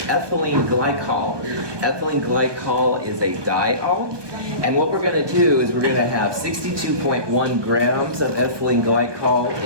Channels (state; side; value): late; left; 1.2 ms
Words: ethylene glycol. Ethylene glycol is a diol, and what we're going to do is we're going to have 62.1 grams of ethylene glycol